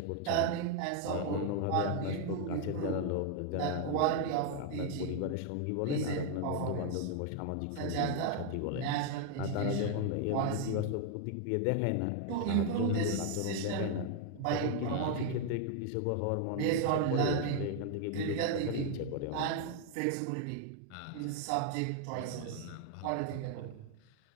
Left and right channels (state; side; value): different; both; correlation 0.00